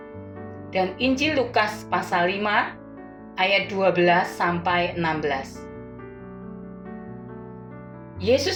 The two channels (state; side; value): identical; both; correlation 1.00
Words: dan Injil Lukas pasal 5 ayat 12 sampai 16.